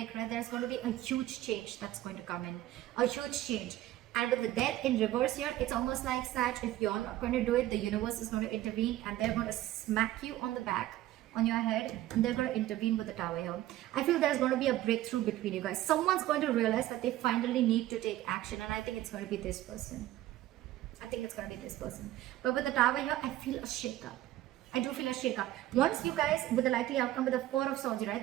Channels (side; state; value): left; quieter; 14.8 dB